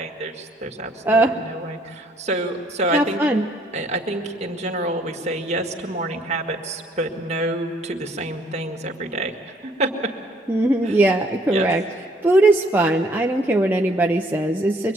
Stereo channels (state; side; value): normal; both; correlation 0.63